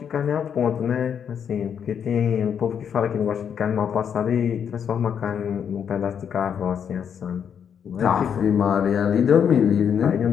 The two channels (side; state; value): right; quieter; 7.9 dB